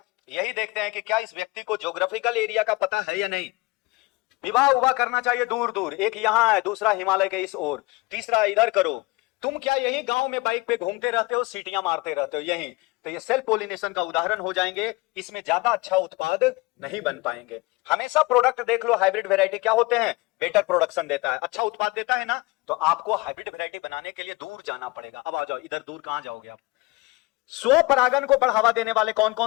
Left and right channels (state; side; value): quieter; right; 23.2 dB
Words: यही देखते हैं कि क्या इस व्यक्ति को ज्योग्राफिकल एरिया का पता है या नहीं। विवाह उवाह करना चाहिए दूर दूर, एक यहाँ है, दूसरा हिमालय के इस ओर, तीसरा इधर करो। तुम क्या यही गांव में बाइक पे घूमते रहते हो, सीटियां मारते रहते हो यहीं। तो ये सेल्फ पोलिनेशन का उदाहरण हो जाएंगे। इसमें ज्यादा अच्छा उत्पाद नहीं बन पाएंगे। हमेशा प्रोडक्ट देख लो, हाइब्रिड वेराइटी क्या होते हैं, बेटर प्रोडक्शन देता है, अच्छा उत्पाद देता है ना। तो आपको हाइब्रिड वेराइटी बनाने के लिए दूर जाना पड़ेगा। अब आ जाओ इधर, दूर कहां जाओगे आप। स्वपरागन को बढ़ावा देने वाले कौन